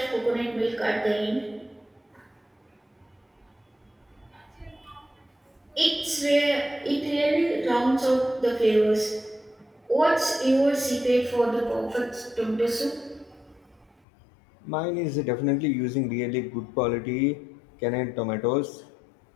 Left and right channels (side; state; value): right; drops out; at 14.0 s